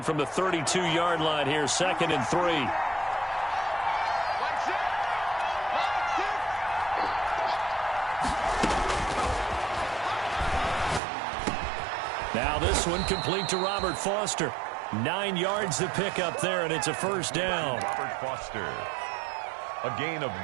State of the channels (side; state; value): left; drops out; at 11.0 s